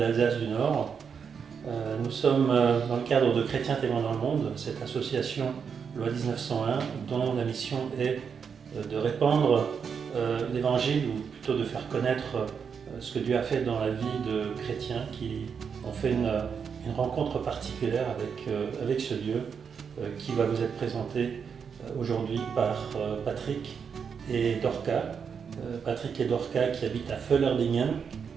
du Nord. Nous sommes dans le cadre de Chrétiens témoins dans le monde, cette association Loi 1901 dont la mission est de répandre l'évangile ou plutôt de faire connaître ce que Dieu a fait dans la vie de chrétiens qui ont fait une rencontre particulière avec ce Dieu qui va vous être présenté aujourd'hui par Patrick et Dorca. Patrick et Dorca qui habitent à Völlerdingen.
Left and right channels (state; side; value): quieter; left; 6.6 dB